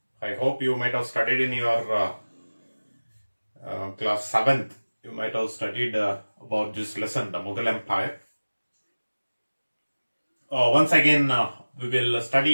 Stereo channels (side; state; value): both; inverted; correlation -1.00